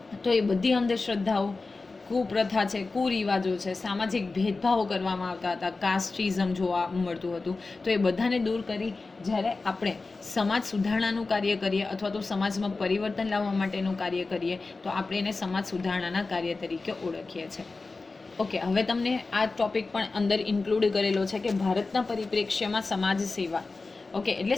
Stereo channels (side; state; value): right; quieter; 3.7 dB